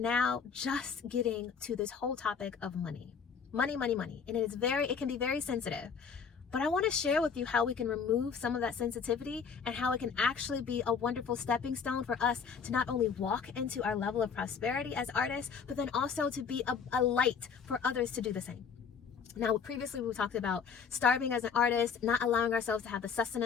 just getting to this whole topic of money. Money, money, money. And it can be very sensitive. But I want to share with you how we can remove some of that sensitivity and how it can actually be a wonderful stepping stone for us to not only walk into our level of prosperity as artists, but then also to be a light for others to do the same. Now, previously we talked about starving as an artist, not allowing ourselves to have the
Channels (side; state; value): right; quieter; 6.3 dB